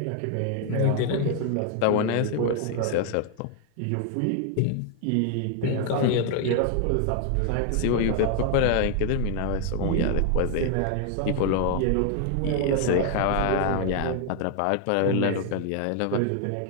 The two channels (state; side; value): different; both; correlation 0.00